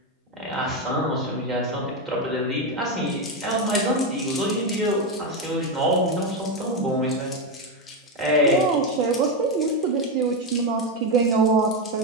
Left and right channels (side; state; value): both; normal; correlation 0.09